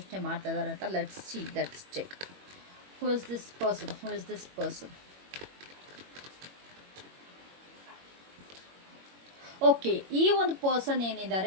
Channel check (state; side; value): late; left; 21 ms